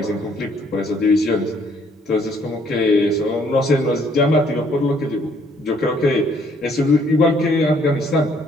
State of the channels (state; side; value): normal; both; correlation 0.65